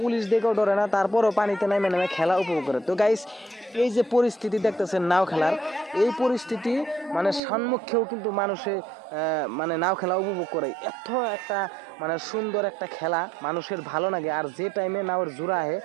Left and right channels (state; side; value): drops out; left; at 7.4 s